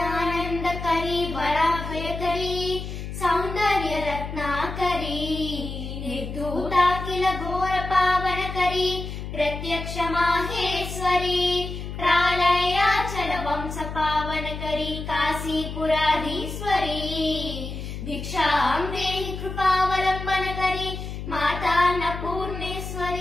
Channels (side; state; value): left; noise; hum, 7 dB below the sound